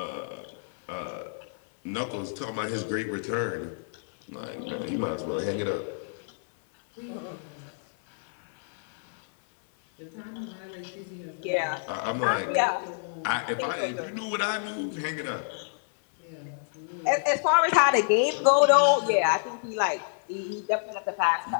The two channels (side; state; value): right; silent; 58 dB below the other